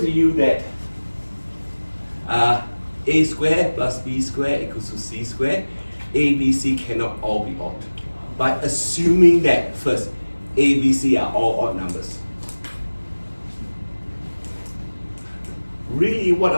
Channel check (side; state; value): both; inverted; correlation -1.00